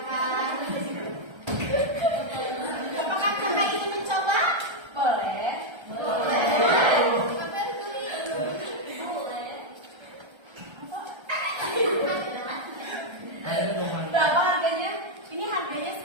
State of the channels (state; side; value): late; left; 1.3 ms